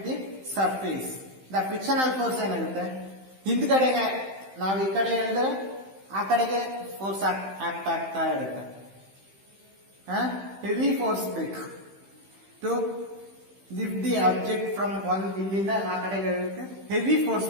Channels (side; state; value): left; late; 15 ms